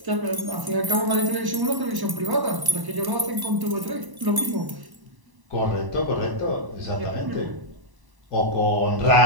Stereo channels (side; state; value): left; late; 1.0 ms